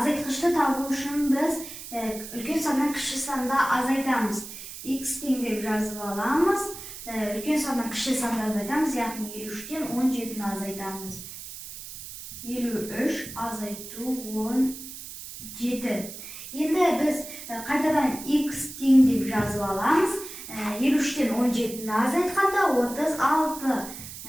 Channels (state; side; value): noise; right; hiss, 12 dB below the sound